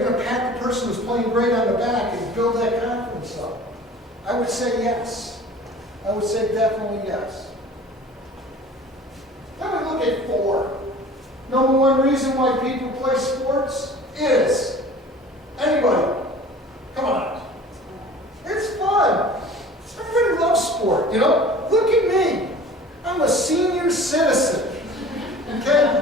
to pat the person who's playing great on the back and build that confidence up? I would say yes. I would say definitely yes. Then we look at 4. Number 1 reason why people play sports is, anybody, come on, it's fun. Everybody loves sport, you know? Look at me. I'm a senior citizen,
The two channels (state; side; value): normal; both; correlation 0.44